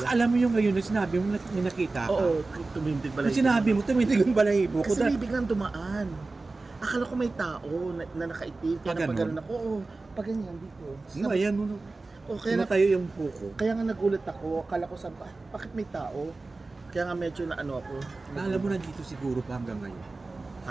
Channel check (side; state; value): left; quieter; 3.5 dB